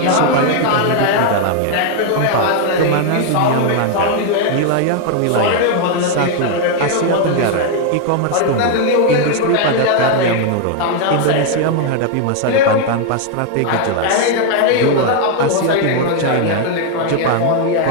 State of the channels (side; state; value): both; different; correlation 0.00